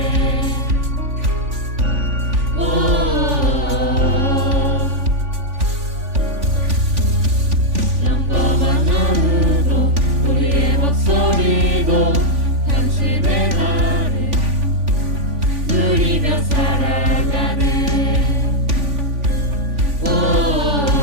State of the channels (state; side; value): late; left; 3.5 ms